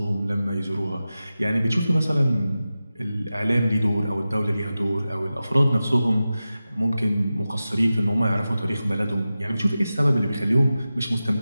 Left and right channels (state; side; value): inverted; both; correlation -0.94